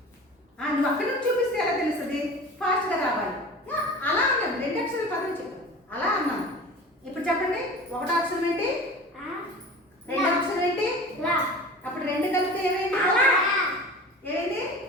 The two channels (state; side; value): normal; both; correlation 0.38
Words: నువ్వు అక్కడి నుంచి చూపిస్తే ఎలా తెలుస్తుంది? ఫాస్ట్గా రావాలి. అలా అన్నాను, రెండు అక్షరాలు పదం చెప్పు. అలా అన్నాను. ఇప్పుడు చెప్పండి, ఒకటో అక్షరం ఏంటి, రెండో అక్షరం ఏంటి? అప్పుడు రెండు కలిపితే ఏమైంది? ఏమైంది?